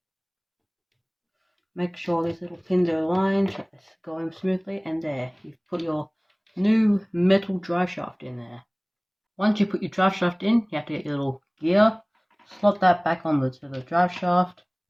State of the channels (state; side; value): identical; both; correlation 1.00